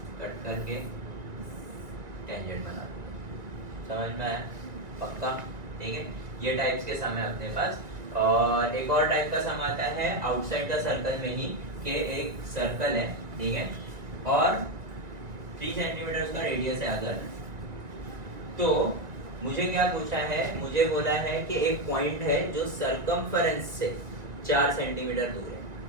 कट करके टेंजेंट बना दूंगा। समझ में आया? पक्का? ठीक है, ये टाइप्स के सम है अपने पास। और एक और टाइप का सम आता है आउटसाइड द सर्कल में ही, कि एक सर्कल है, ठीक है, और 3 सेंटीमीटर उसका रेडियस है अगर, तो मुझे क्या पूछा है, मुझे बोला है कि एक पॉइंट है जो सरकमफेरेंस से 4 सेंटीमीटर दूर है।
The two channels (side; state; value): left; late; 2.1 ms